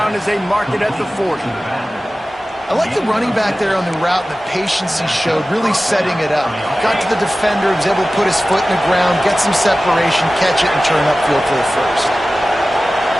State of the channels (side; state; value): both; normal; correlation 0.96